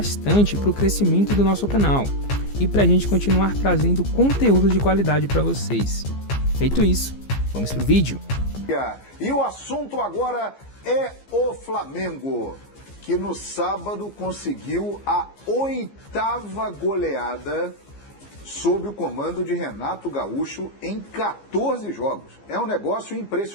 para o crescimento do nosso canal e para a gente continuar trazendo conteúdo de qualidade para vocês. Feito isso, vamos pro vídeo. E o assunto agora é o Flamengo, que no sábado conseguiu a 8ª goleada sob o comando de Renato Gaúcho em 14 jogos. É um negócio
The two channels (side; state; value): right; late; 15 ms